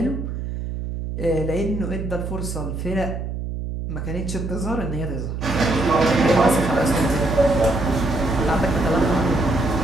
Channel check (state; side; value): noise; right; hum, 5 dB below the sound